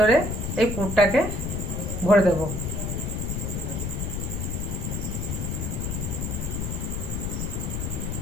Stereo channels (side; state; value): left; noise; rumble, 2 dB below the sound